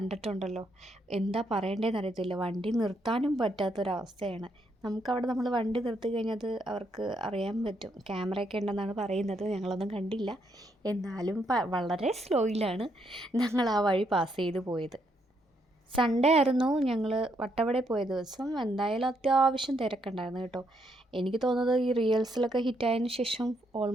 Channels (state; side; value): normal; both; correlation 0.75